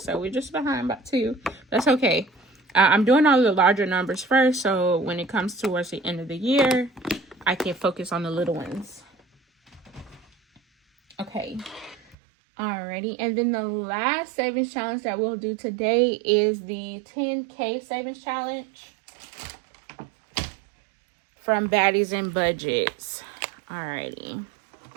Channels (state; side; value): drops out; left; at 12.2 s